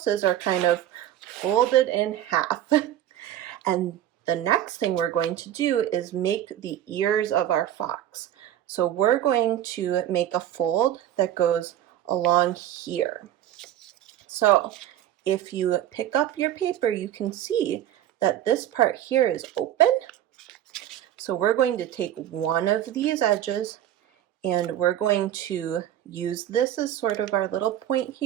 are kind of folded in half. And the next thing we're going to do is make the ears of our fox. So we're going to make a fold that goes along here. So if you pick up your paper, you can see that this part here is open. So we're going to take one of these edges, and we're going to use this as sort of our little point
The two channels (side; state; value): left; quieter; 11.9 dB